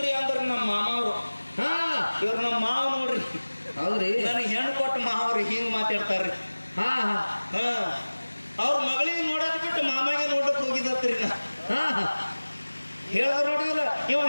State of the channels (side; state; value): both; inverted; correlation -1.00